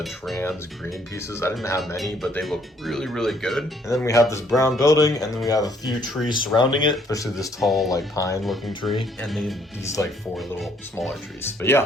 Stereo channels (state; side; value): normal; both; correlation 0.65